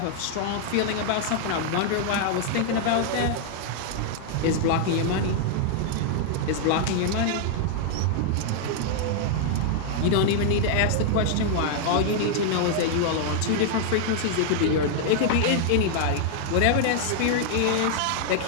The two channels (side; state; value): both; different; correlation 0.00